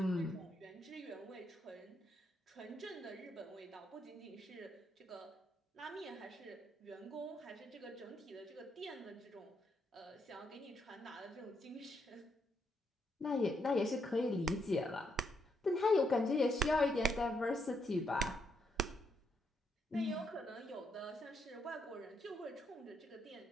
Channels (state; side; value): normal; both; correlation 0.77